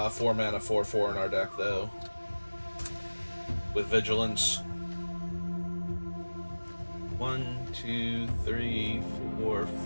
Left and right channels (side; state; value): both; inverted; correlation -1.00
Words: mana 4/4 in our deck, though. With Vigilance. 1, 2, 3, 4,